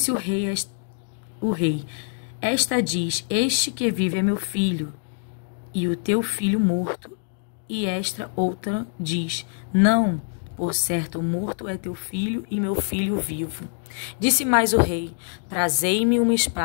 o rei: esta diz: este que vive é meu filho, e o teu filho morto. E esta outra diz: não, por certo morto é teu filho e meu filho vivo. Disse mais o rei: trazei-me uma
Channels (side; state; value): right; silent; 62 dB below the other